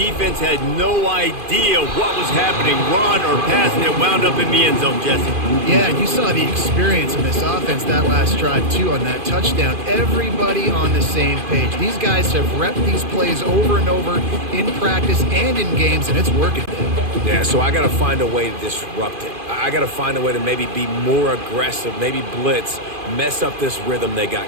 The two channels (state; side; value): late; left; 2.5 ms